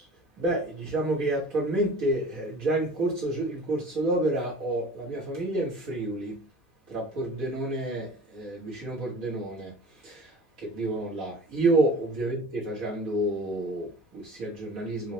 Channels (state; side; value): normal; both; correlation 0.42